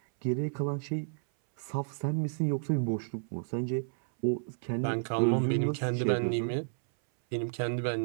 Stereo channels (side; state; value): left; silent; 57 dB below the other